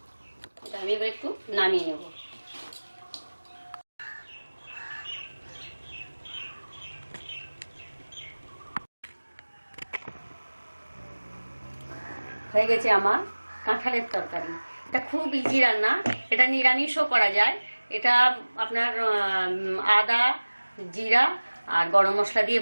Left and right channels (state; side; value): inverted; both; correlation -1.00